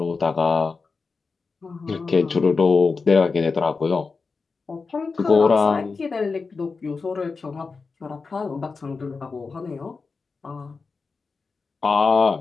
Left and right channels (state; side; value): quieter; right; 4.5 dB